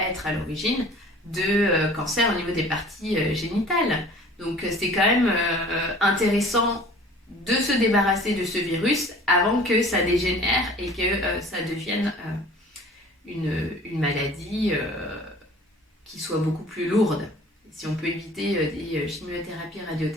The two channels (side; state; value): both; normal; correlation 0.47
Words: à l'origine de cancers au niveau des parties génitales. Donc c'est quand même intéressant de se débarrasser de ce virus avant que ça dégénère et que ça devienne une maladie qui soit beaucoup plus lourde. Si on peut éviter des chimiothérapies,